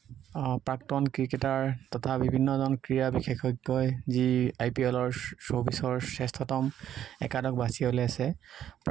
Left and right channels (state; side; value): quieter; left; 10.6 dB